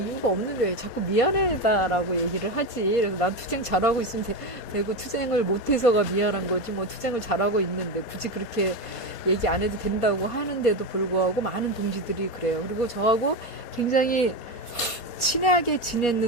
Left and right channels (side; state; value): right; late; 4.2 ms